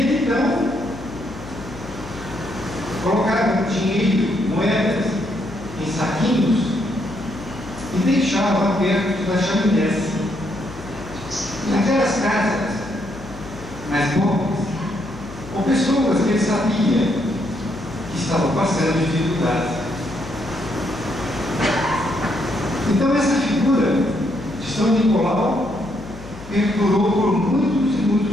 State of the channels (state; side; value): noise; left; hum, 16 dB below the sound